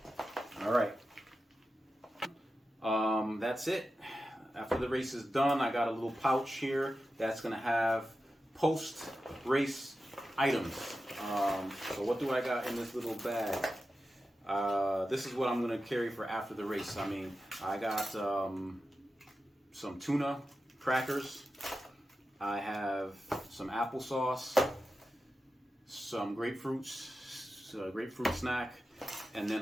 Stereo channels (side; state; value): both; normal; correlation 0.92